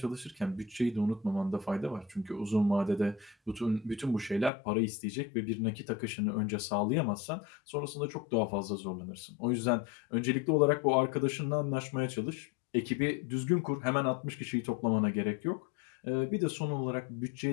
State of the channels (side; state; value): right; drops out; at 4.5 s